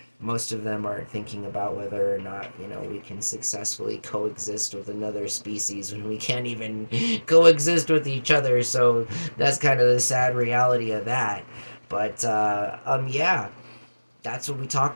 most of them aren't thinking about whether or not we can successfully coexist with another species when we can't even coexist with each other. So that's kind of the sad reality of that. But yeah, that's what we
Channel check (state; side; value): inverted; both; correlation -1.00